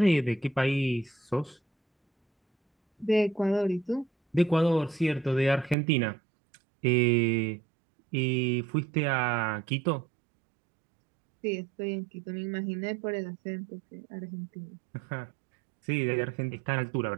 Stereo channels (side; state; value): left; drops out; at 5.8 s